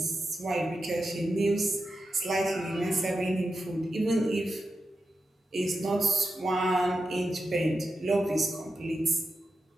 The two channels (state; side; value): normal; both; correlation 0.89